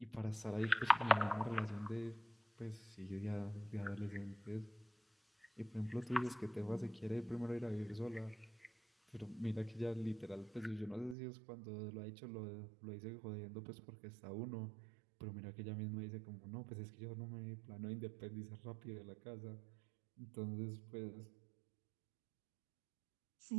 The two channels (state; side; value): drops out; left; at 11.2 s